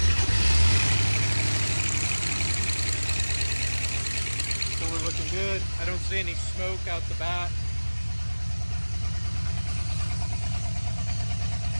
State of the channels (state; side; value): inverted; both; correlation -1.00